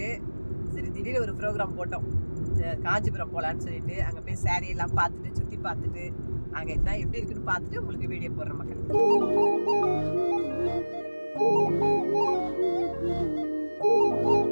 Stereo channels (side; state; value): both; inverted; correlation -1.00